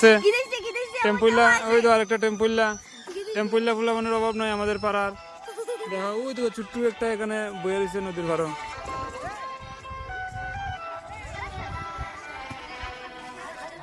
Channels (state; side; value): identical; both; correlation 1.00